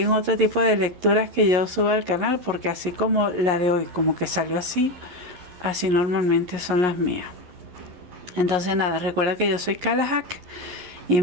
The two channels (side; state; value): left; late; 11 ms